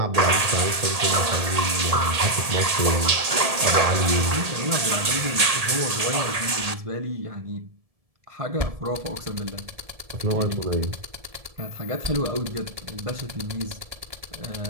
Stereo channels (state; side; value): late; left; 1.8 ms